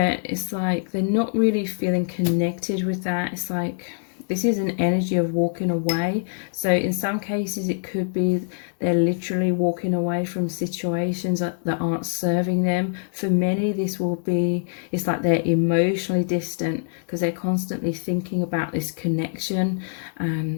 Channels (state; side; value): silent; right; digital silence